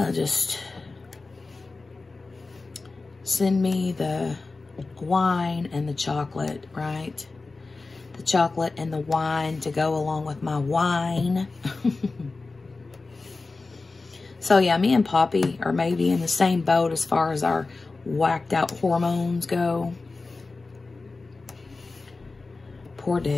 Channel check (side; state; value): right; quieter; 3.7 dB